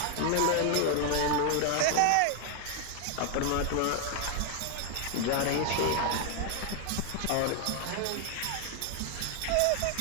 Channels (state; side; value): different; both; correlation 0.00